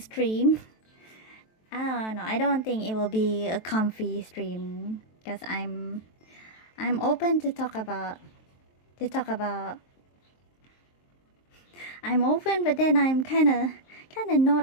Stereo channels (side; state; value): right; late; 23 ms